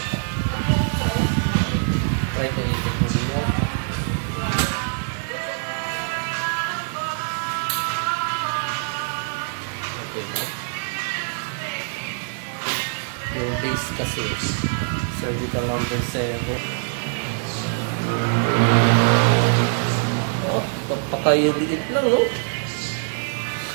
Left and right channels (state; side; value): silent; left; 62 dB below the other